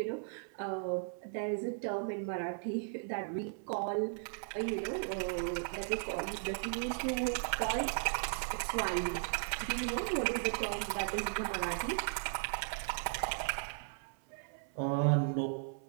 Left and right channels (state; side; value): silent; left; 53 dB below the other